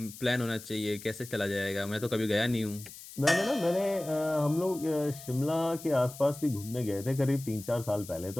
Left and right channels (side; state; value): left; noise; hiss, 15 dB below the sound